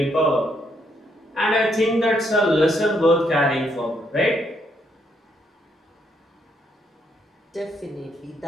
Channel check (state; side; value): normal; both; correlation 0.74